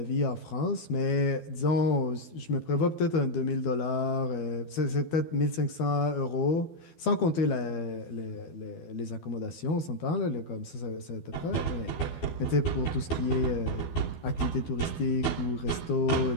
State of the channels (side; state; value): right; late; 12 ms